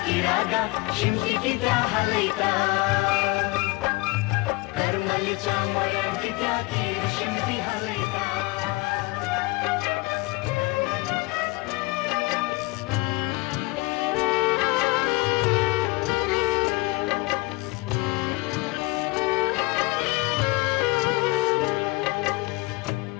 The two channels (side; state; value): right; quieter; 24.6 dB